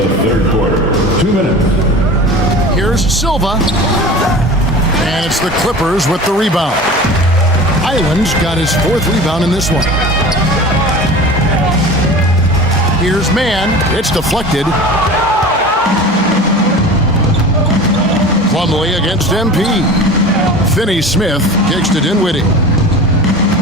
third quarter. 2 minutes. Here's Silva. And it's the Clippers with the rebound. Island's got his 4th rebound in this one. Here's Mann. It's deflected. Plumlee against MP. Finney-Smith kicks to Dinwiddie.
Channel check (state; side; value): normal; both; correlation 0.36